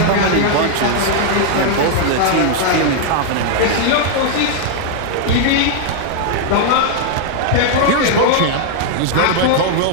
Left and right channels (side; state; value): both; different; correlation 0.00